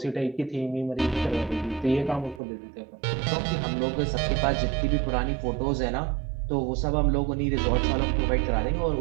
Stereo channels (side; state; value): left; drops out; at 2.4 s